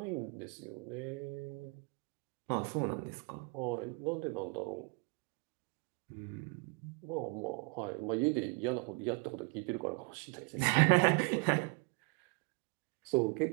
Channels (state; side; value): quieter; left; 31.9 dB